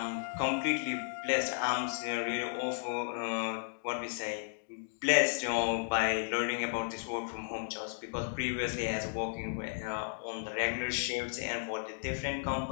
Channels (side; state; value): right; silent; digital silence